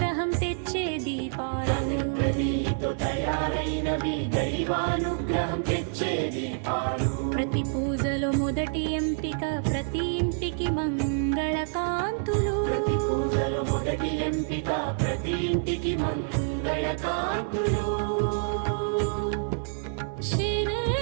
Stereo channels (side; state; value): left; silent; 60 dB below the other